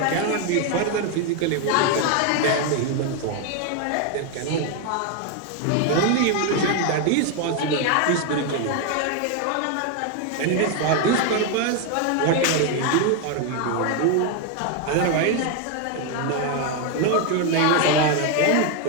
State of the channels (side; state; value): both; different; correlation 0.01